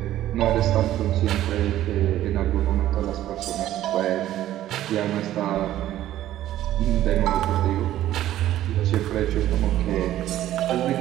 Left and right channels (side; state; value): left; quieter; 13.2 dB